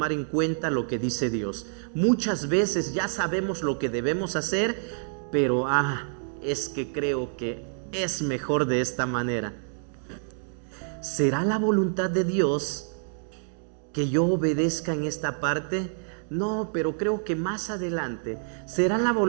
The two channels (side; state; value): left; silent; digital silence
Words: en cuenta lo que dice Dios. Muchas veces ya sabemos lo que debemos hacer, pero es que creo que es mejor de esta manera. ¿Será la voluntad de Dios que yo obedezca en esta parte? No, pero creo que más adelante. ¿Será la